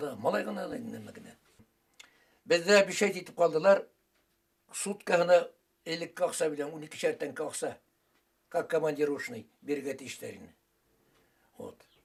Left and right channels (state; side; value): identical; both; correlation 1.00